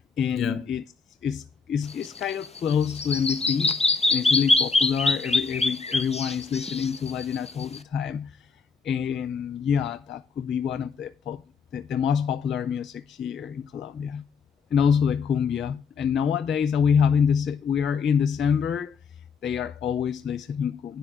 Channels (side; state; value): right; quieter; 5.6 dB